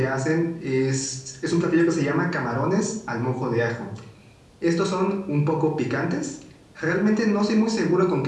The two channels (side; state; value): both; identical; correlation 1.00